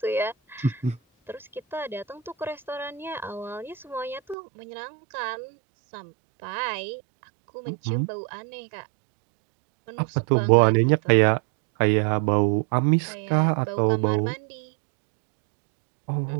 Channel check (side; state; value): left; drops out; at 4.4 s